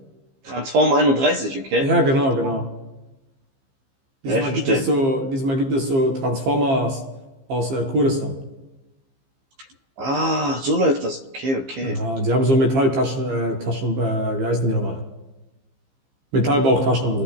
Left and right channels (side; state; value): left; late; 15 ms